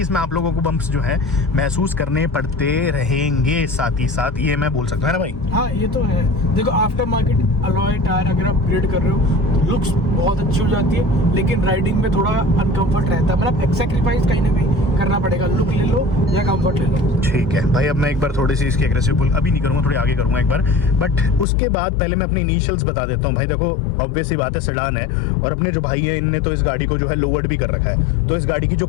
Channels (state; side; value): drops out; right; at 21.5 s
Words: इसमें आप लोगों को बम्प्स जो है महसूस करने पड़ते रहेंगे साथ ही साथ, ये मैं बोल सकता हूँ ना भाई। हाँ ये तो है। देखो, आफ्टर मार्केट अलॉय टायर अगर आप अपग्रेड कर रहे हो, लुक्स बहुत अच्छी हो जाती है, लेकिन राइडिंग में थोड़ा अनकंफर्ट रहता है, मतलब एक सैक्रिफाइस कहीं ना कहीं करना पड़ेगा, लुक ले लो या कंफर्ट ले लो। ठीक है भाई, अब मैं एक बार थोड़ी सी इसकी एग्रेसिव पुल अभी नहीं करूँगा, थोड़ी आगे करूँगा एक बार, बट उसके बाद पहले मैं अपने इनिशियल्स बता देता हूँ। भाई देखो, ऑब्वियस सी बात है, सेडान है, और अपने जो भाई है इनने तो इस गाड़ी को जो है लोवर्ड भी कर रखा है, तो इस गाड़ी की जो